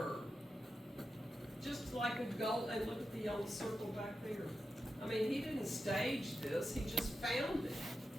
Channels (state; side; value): normal; both; correlation 0.90